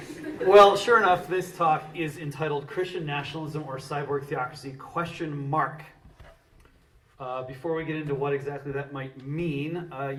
Well, sure enough, this talk is entitled Christian Nationalism or Cyborg Theocracy, ? Before we get into what exactly that might mean,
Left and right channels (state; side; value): identical; both; correlation 1.00